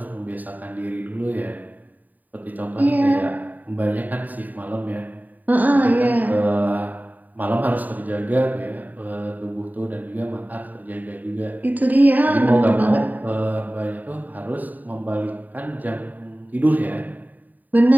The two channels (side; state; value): left; late; 0.083 ms